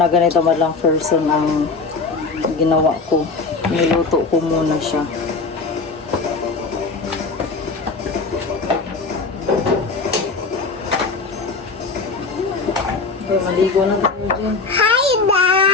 ganito madlang person ang ginawa ko. Niluto ko muna siya. Okay, maligo na tayo dyan. Hi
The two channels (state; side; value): quieter; right; 4.2 dB